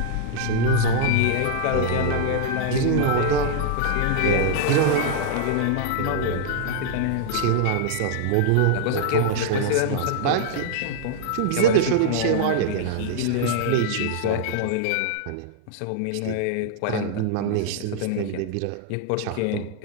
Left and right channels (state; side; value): different; both; correlation -0.01